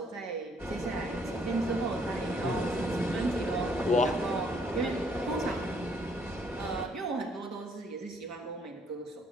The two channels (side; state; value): both; normal; correlation 0.66